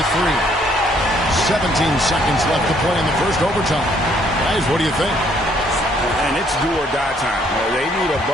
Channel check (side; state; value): both; normal; correlation 0.65